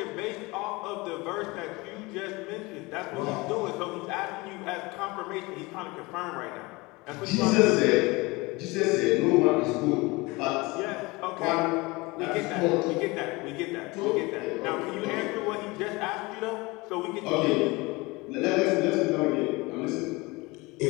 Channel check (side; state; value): right; quieter; 23.9 dB